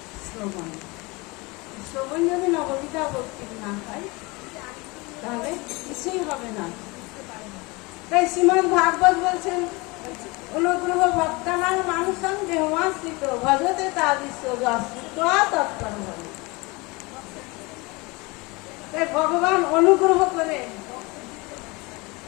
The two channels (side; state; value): right; quieter; 25.3 dB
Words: শ্রবণ। শ্রবণ যদি নববিধা ভক্তির না হয় তাহলে কিছুই হবে না। তাই শ্রীমদ্ ভাগবত বলছেন, অনুগ্রহ ভক্তানাং মানুষং দেহমাশ্রিত ভজতে তাদৃশ্য তৎপর হবে। তাই ভগবান অনুগ্রহ করে